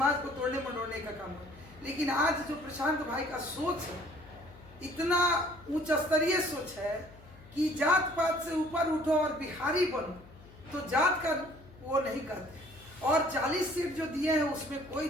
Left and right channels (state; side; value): noise; left; hum, 21 dB below the sound